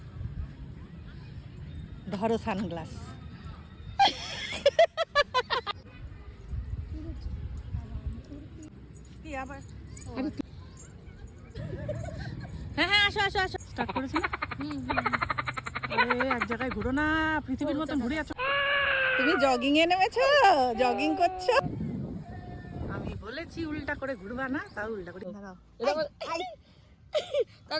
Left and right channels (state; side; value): identical; both; correlation 1.00